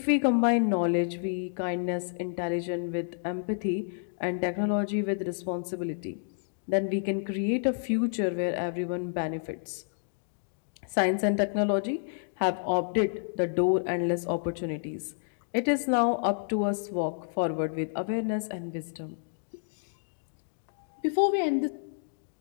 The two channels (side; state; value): right; silent; digital silence